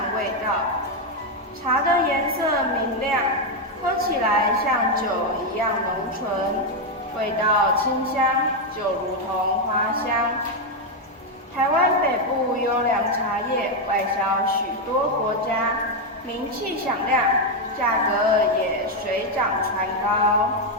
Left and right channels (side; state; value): both; normal; correlation 0.04